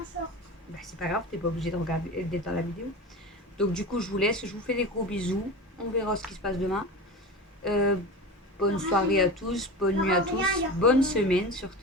short. Bah c'est pas grave, t'es pas obligé de regarder d'être dans la vidéo. Donc du coup je vous laisse, je vous fais des gros bisous. On verra ce qui se passe demain. Bonne soirée à tous, bonne nuit à tous, bonne semaine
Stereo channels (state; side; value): normal; both; correlation 0.29